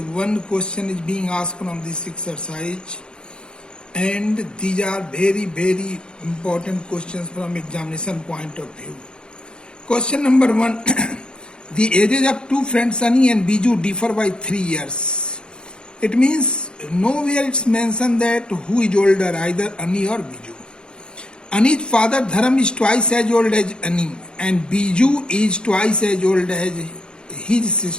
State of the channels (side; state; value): right; late; 0.050 ms